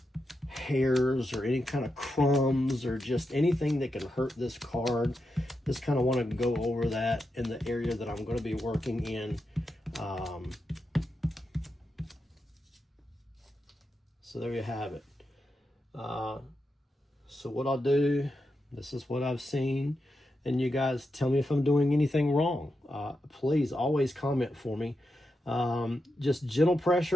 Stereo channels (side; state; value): both; normal; correlation 0.87